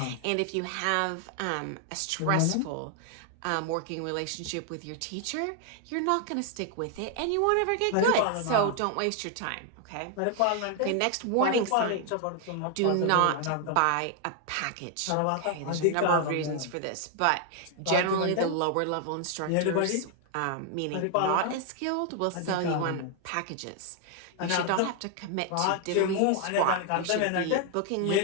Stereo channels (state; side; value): different; both; correlation 0.00